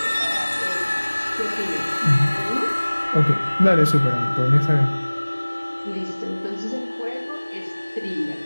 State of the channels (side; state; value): both; inverted; correlation -1.00